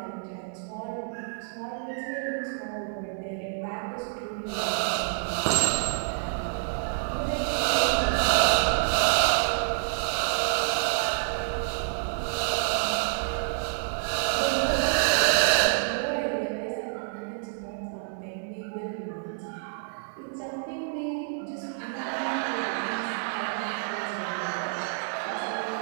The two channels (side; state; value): left; silent; 59 dB below the other